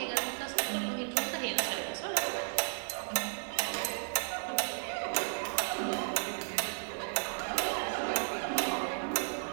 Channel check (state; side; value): silent; left; digital silence